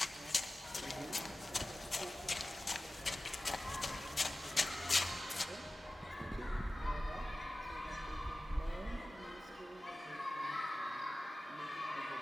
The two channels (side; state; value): both; normal; correlation 0.96